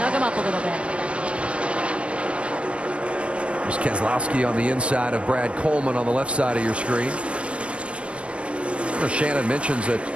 him up a little bit. There's Keselowski on the inside of Brad Coleman on the left side of your screen. Shannon mentions that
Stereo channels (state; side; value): late; left; 0.060 ms